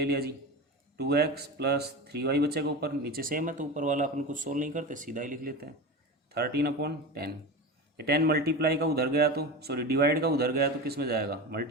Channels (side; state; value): both; normal; correlation 0.26